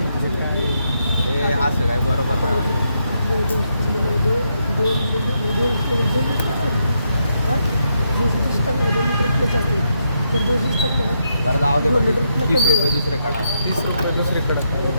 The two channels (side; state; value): both; inverted; correlation -0.80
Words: असं काय बरोबर नाही. बरं जाऊ दे 30 रुपये दुसरे काढा. 30 रुपये दुसरीकडे.